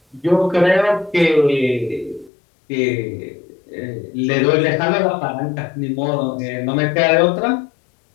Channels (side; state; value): right; drops out; at 2.3 s